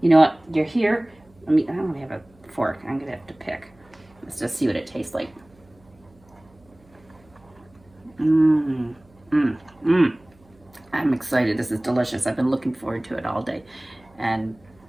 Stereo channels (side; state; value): right; noise; hum, 29 dB below the sound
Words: you know what? You're here. I don't have a fork. I'm gonna have to pick. Let's just see what it tastes like. I'm excited. This is delicious. I've been looking forward to it all day. And